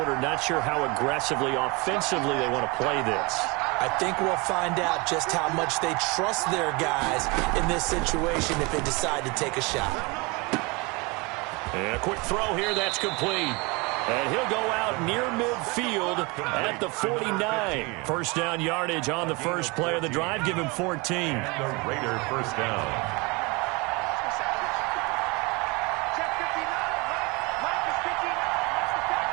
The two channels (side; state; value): left; quieter; 27.2 dB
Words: not sure how aggressively, offensively they want to play this. I think we'll find out just how much they trust their guys in this situation if they decide to take a shot. And a quick throw here, that's complete. And he'll go out near midfield at the 49. First down yardage on the first play of the drive. Give him 14. The Raider first down.